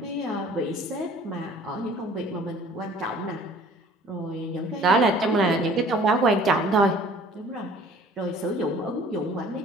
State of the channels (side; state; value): both; normal; correlation 0.51